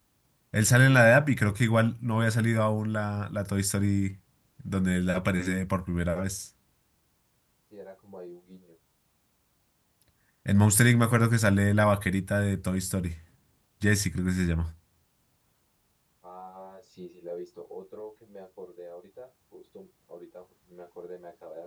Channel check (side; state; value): both; identical; correlation 1.00